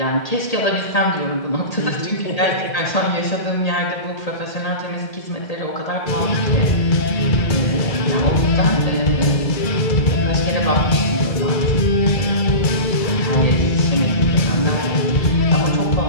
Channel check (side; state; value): right; late; 2.3 ms